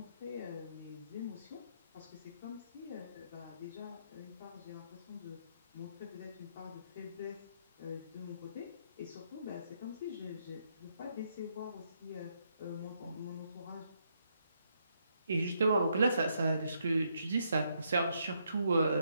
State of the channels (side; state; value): both; inverted; correlation -0.76